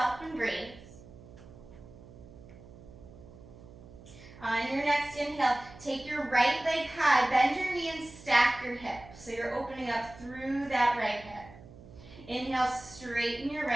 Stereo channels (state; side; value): noise; right; hum, 19 dB below the sound